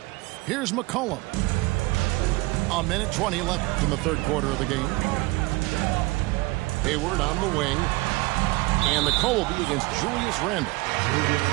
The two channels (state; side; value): quieter; left; 22.9 dB